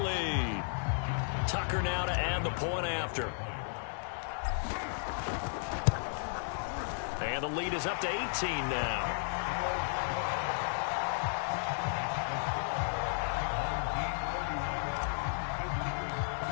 Tucker now to add the point after. And the lead is up to 18 now.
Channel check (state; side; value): silent; right; 55 dB below the other